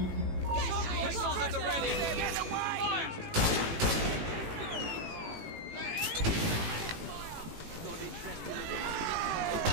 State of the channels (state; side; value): late; left; 18 ms